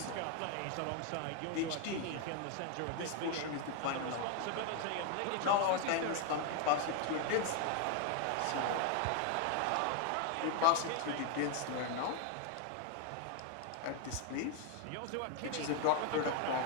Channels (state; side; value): different; both; correlation 0.01